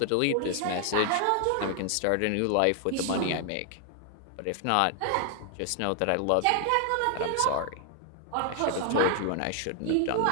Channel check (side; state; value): both; different; correlation 0.00